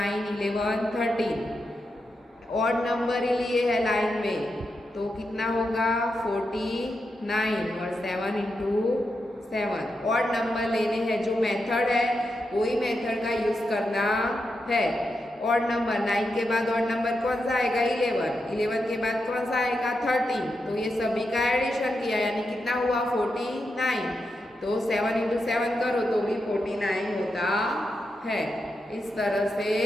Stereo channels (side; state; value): both; normal; correlation 0.86